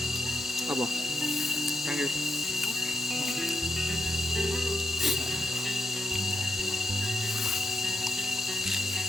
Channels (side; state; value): both; normal; correlation 0.84